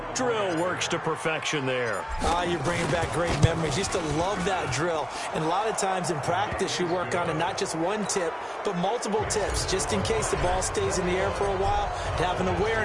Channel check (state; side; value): identical; both; correlation 1.00